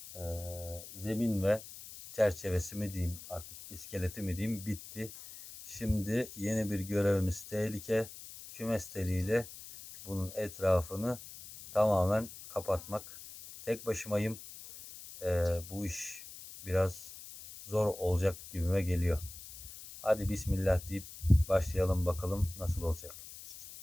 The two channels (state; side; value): noise; left; hiss, 14 dB below the sound